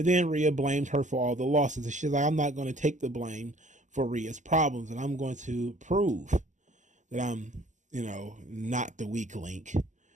then Rhea blamed her for all the losses. And she's like, I'm not going to take the blame for Rhea's problems, and I'm going to prove that I'm, not the weak link.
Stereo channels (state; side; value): late; left; 0.35 ms